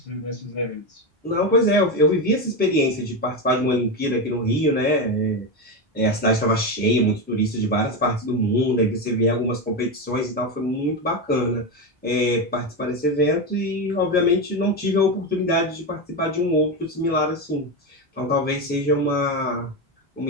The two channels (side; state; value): both; normal; correlation 0.13